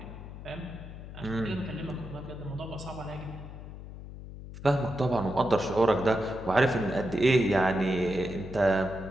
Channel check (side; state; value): left; noise; hum, 12 dB below the sound